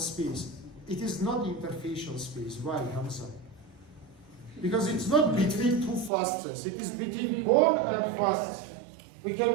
It is not interfacial space. Why, Hamza? Because it's not between two fascias. It is between bone and fascia. We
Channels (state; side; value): drops out; left; at 6.1 s